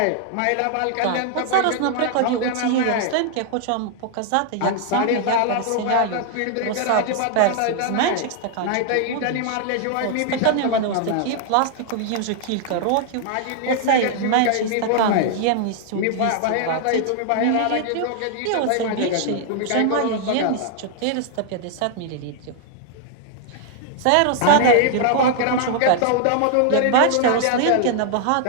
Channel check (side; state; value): both; different; correlation 0.00